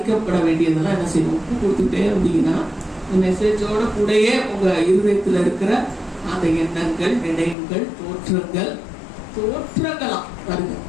வேண்டியதெல்லாம் என்ன செய்யணும், ஒப்பு கொடுத்துக்கிட்டே இருந்தீங்கன்னா மெசேஜோட கூடயே உங்க இருதயத்துல இருக்கிற அந்த எண்ணங்கள், நினைவுகள், தோற்றங்களாம் வருங்க.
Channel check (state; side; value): drops out; right; at 7.6 s